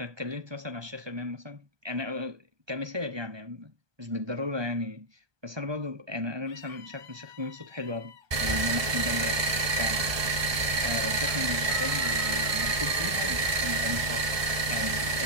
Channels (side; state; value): left; late; 1.2 ms